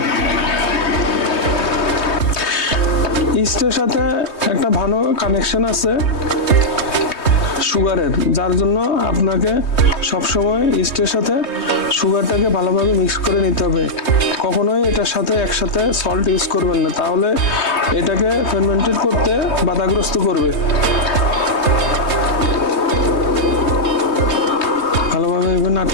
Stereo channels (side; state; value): right; late; 3.2 ms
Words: ইস্টের সাথে একটা ভালো কানেকশন আছে সুগারের, যার জন্য আপনাকে সবসময় ইস্টের সাথে সুগারটাকে ভালোভাবে মিক্স করে নিতে হবে। কখনোই এটার সাথে একসাথে সল্ট ইউজ করবেন না, তাহলে এটাকে ফার্মেন্টেড করতে বাধাগ্রস্ত করবে। ভালোভাবে এভাবে